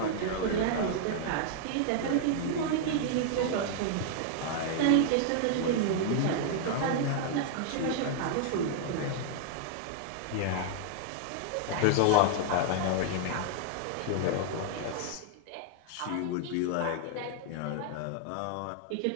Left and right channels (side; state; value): both; different; correlation -0.01